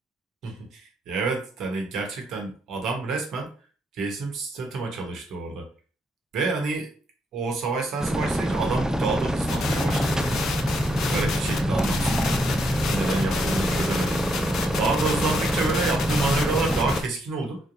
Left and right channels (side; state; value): both; normal; correlation 0.76